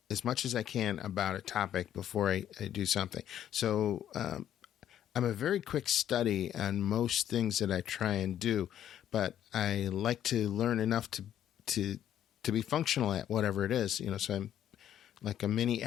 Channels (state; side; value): quieter; right; 10.6 dB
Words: as much as I can about a topic before I do something. So I'm a very quick study on most things that I try and do, but I like to learn enough to be functional at whatever it is. So I'm like a mini